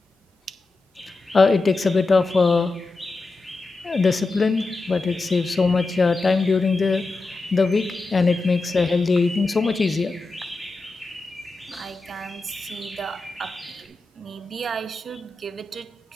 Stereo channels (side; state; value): right; quieter; 3.4 dB